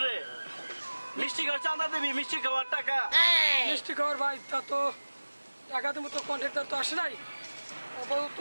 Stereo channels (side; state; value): both; inverted; correlation -1.00